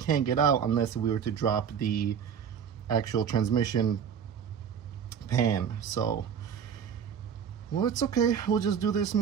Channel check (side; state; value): left; quieter; 7.6 dB